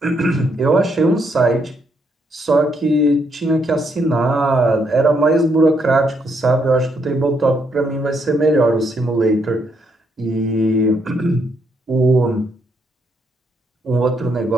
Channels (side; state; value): both; normal; correlation 0.75